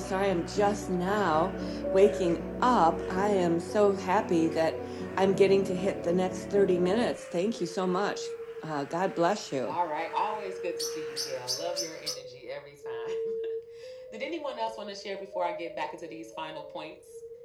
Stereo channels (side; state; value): both; identical; correlation 1.00